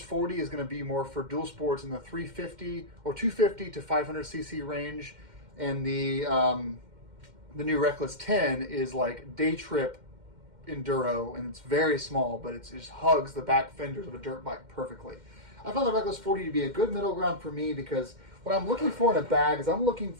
40 is going to be more for dual sports in the 350 or 250 to 500 cc range, and the new Reckless 10 is like day trip enduro, and it's very small, but it just hugs the back fenders of a dirt bike perfectly. I found the Reckless 40 to be a good middle ground for me because what I'm looking for in a bag is I'm looking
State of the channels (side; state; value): left; late; 2.1 ms